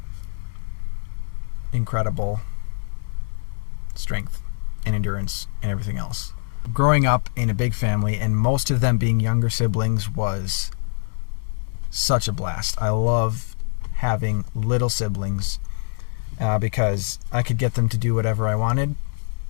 incredible strength and endurance and everything else. Growing up in a big family, and most of them being younger siblings, was such a blast. I love having little siblings because I could get them to do whatever I wanted,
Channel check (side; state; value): right; silent; digital silence